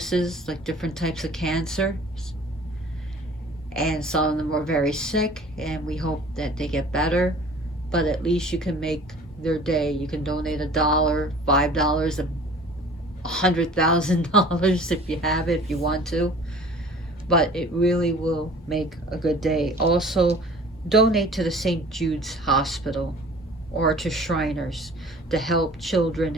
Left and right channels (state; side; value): normal; both; correlation 0.47